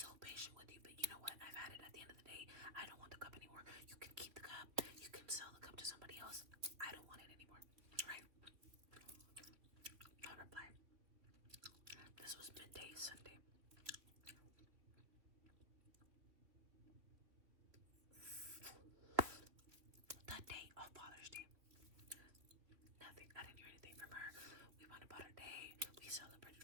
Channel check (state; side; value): late; left; 3.0 ms